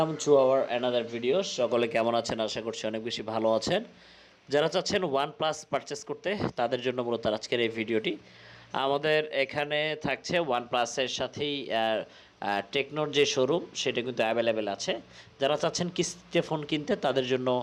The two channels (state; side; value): identical; both; correlation 1.00